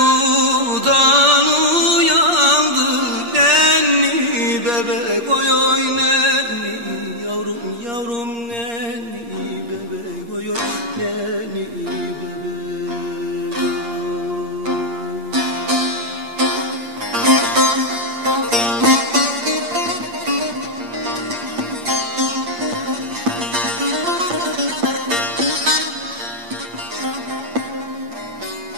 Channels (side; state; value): left; late; 8.5 ms